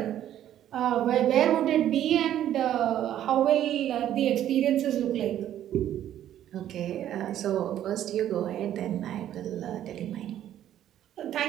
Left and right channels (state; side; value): quieter; left; 11.5 dB